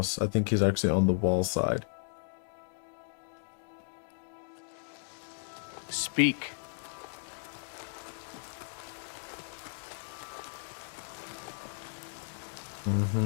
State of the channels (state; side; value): silent; right; digital silence